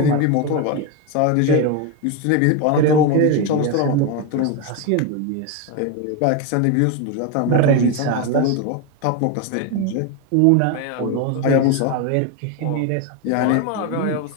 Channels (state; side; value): different; both; correlation 0.02